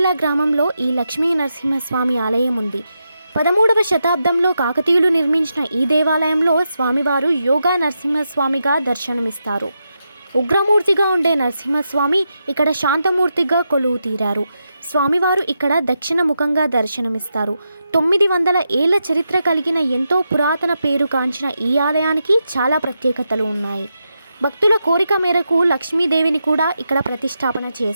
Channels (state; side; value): inverted; both; correlation -0.86